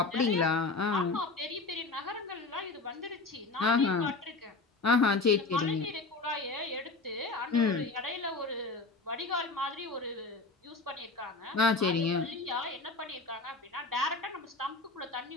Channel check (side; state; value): right; quieter; 3.6 dB